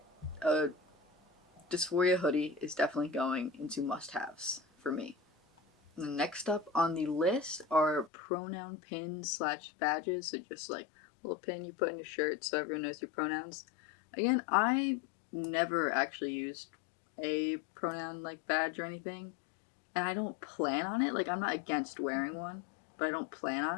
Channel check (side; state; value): right; drops out; at 8.1 s